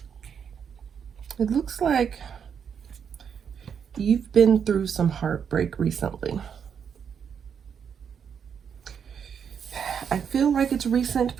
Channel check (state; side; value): quieter; left; 7.4 dB